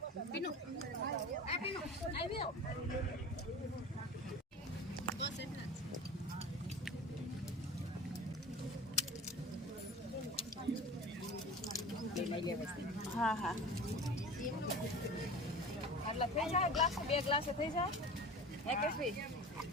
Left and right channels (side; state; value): both; normal; correlation 0.36